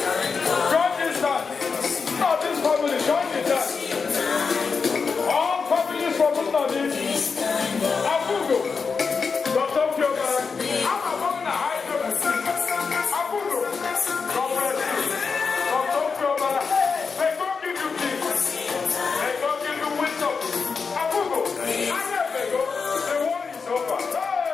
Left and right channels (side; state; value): right; quieter; 5.2 dB